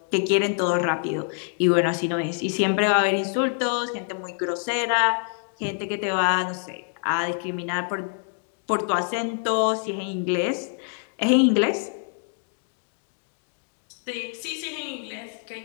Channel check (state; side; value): silent; right; 61 dB below the other